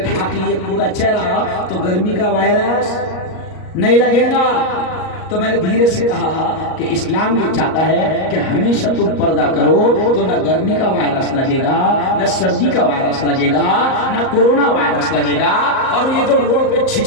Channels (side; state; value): right; late; 38 ms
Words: लिए पूरा चेहरा तो गर्मी का वायरस नहीं लगेगा। तो मैंने धीरे से कहा कि इस्लाम ये चाहता है कि हमेशा तुम पर्दा करो तो न गर्मी का वायरस लगेगा, न सर्दी का वायरस लगेगा, न कोरोना वायरस लगेगा। और ये जो रोड पे